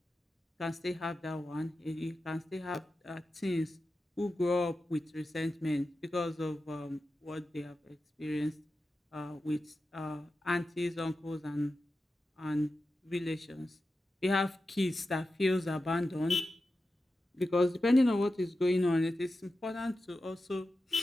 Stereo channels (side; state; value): both; normal; correlation 0.92